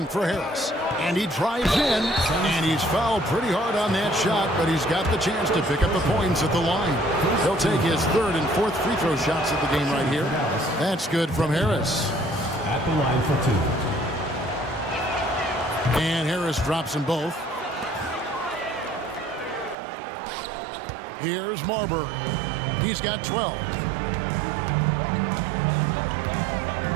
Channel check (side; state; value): left; drops out; at 19.8 s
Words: for Harris. And he drives in, and he's fouled pretty hard on that shot, but he's got the chance to pick up the points at the line. He'll take his 3rd and 4th free throw shots at the game right here. That's good from Harris. At the line for 2. And Harris drops them both. Here's Marbury. He's got 12.